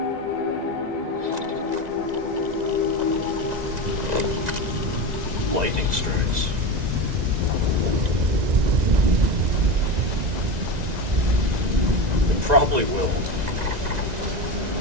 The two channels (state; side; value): late; left; 1.9 ms